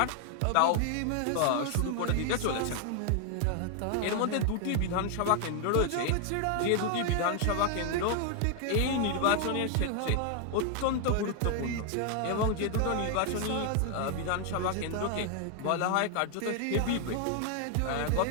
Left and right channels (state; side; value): different; both; correlation 0.00